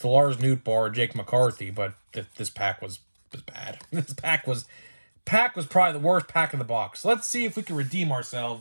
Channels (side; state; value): both; inverted; correlation -1.00